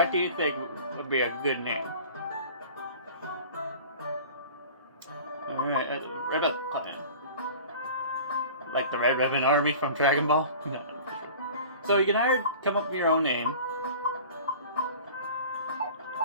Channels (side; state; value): both; inverted; correlation -0.41